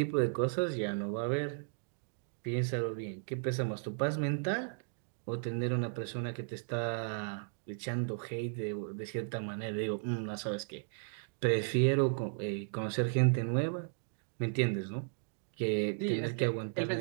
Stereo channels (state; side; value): silent; left; digital silence